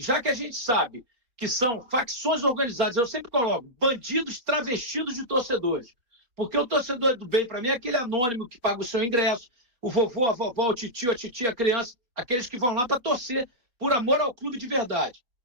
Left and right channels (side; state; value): left; late; 4.2 ms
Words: que a gente sabe que são facções organizadas, eu sempre coloco bandidos travestidos de torcedores. Porque o torcedor do bem, para mim, é aquele anônimo que paga o seu ingresso, o vovô, a vovó, o titio, a titia, a criança, aqueles que vão lá para torcer por amor ao clube de verdade.